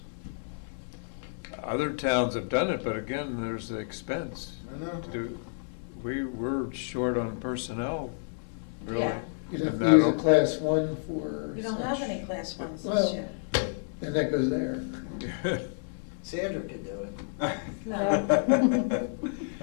Other towns have done it, but again, there's the expense. I know. We're short on personnel, really. Yeah. you'd have And to use a that'll- Class 1 for. We don't have such. any class ones this Well, year. and that goes there. Sandra could do it. No.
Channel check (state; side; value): silent; right; digital silence